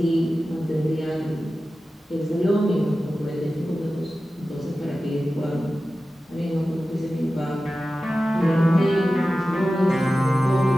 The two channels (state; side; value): normal; both; correlation 0.94